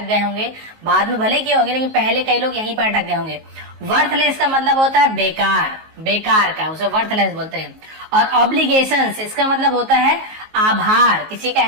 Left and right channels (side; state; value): left; late; 19 ms